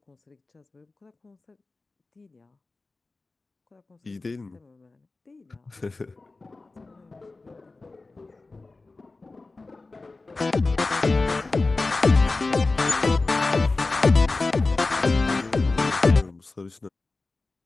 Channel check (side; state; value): right; quieter; 3.5 dB